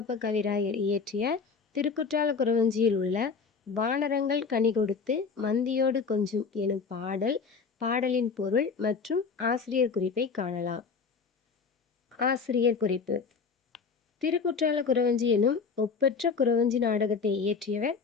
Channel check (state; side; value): quieter; right; 5.3 dB